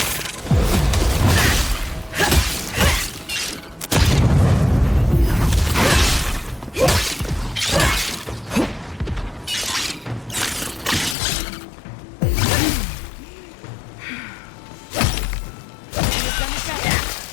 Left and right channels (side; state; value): right; drops out; at 11.2 s